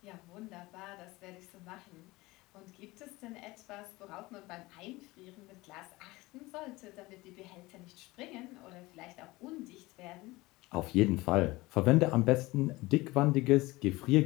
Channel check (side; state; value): right; quieter; 20.9 dB